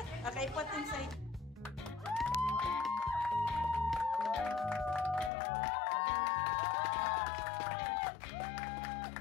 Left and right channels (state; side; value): drops out; right; at 5.3 s